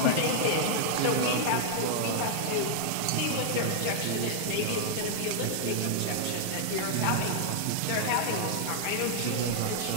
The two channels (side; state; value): both; different; correlation -0.01